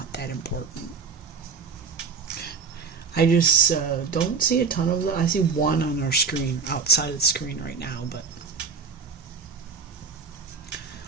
that important. I just don't see a ton of them. I see one on our screen, outside of the screen right now, but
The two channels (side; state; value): left; quieter; 5.2 dB